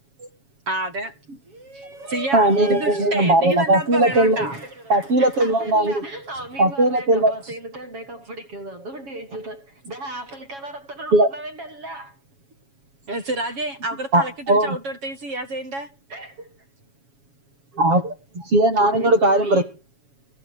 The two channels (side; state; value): left; late; 7.2 ms